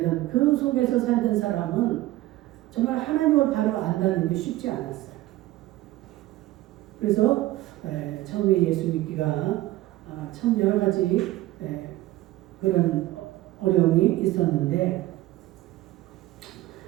그 속에서 살던 사람은 정말 하나님을 바로 안다는 게 쉽지 않았어요. 그래서 처음에 예수 믿기가 참 여러 가지 그런 어려움이 있었는데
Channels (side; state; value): left; quieter; 16.6 dB